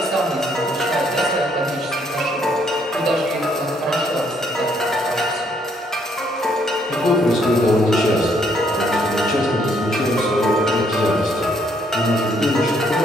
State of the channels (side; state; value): both; normal; correlation 0.69